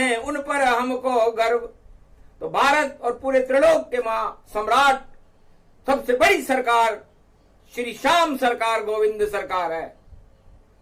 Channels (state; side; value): identical; both; correlation 1.00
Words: उन पर हमको गर्व। तो भारत और पूरे त्रिलोक के मां सम्राट, सबसे बड़ी सरकार श्री श्याम सरकार गोविंद सरकार है,